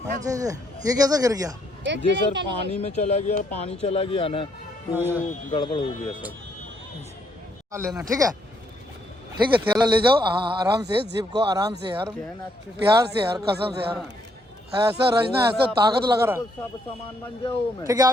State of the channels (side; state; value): both; normal; correlation 0.72